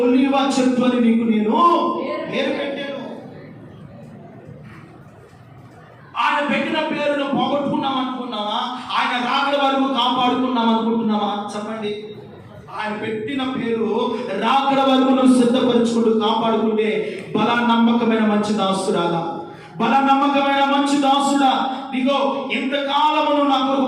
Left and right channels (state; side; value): identical; both; correlation 1.00